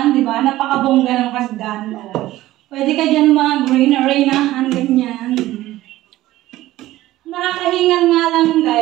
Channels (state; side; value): quieter; left; 15.8 dB